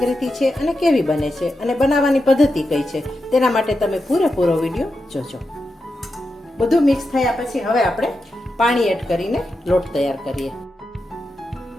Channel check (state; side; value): normal; both; correlation 0.88